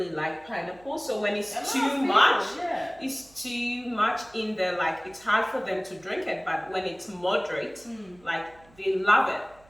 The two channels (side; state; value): right; noise; hum, 27 dB below the sound